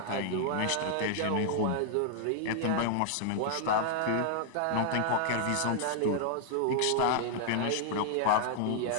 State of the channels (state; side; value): different; both; correlation 0.00